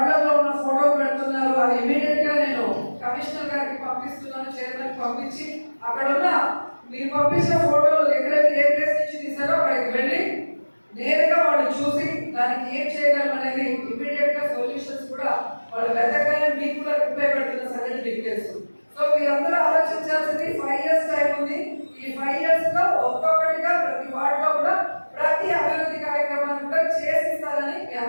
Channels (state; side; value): inverted; both; correlation -1.00